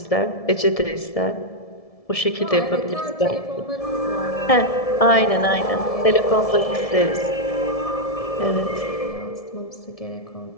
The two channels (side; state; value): right; late; 1.7 ms